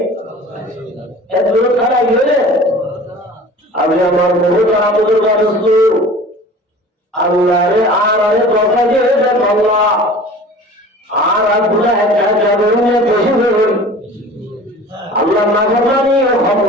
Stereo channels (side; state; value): both; normal; correlation 0.42